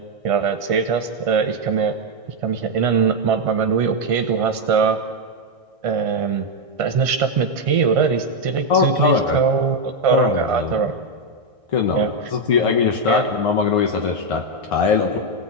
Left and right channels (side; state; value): left; late; 1.6 ms